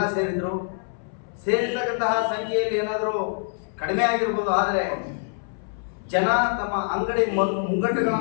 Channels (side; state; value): right; silent; 62 dB below the other